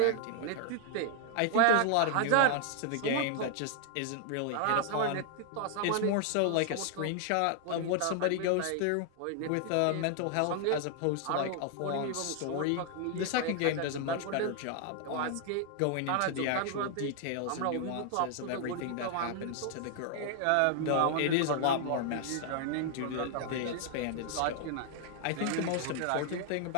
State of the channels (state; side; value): different; both; correlation 0.00